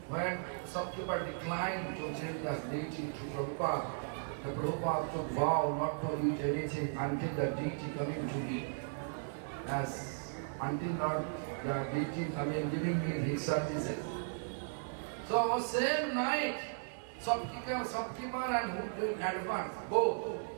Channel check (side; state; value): left; silent; digital silence